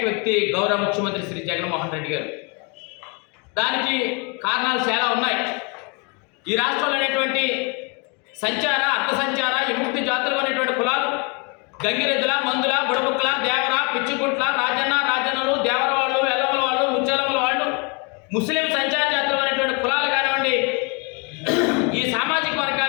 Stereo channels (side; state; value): right; quieter; 32.7 dB